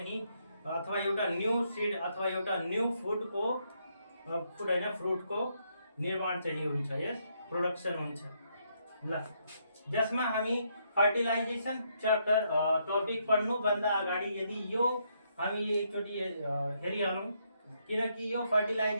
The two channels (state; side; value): inverted; both; correlation -0.75